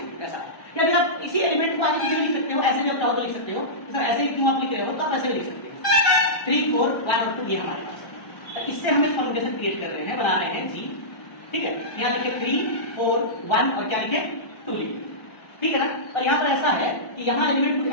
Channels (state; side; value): late; right; 1.3 ms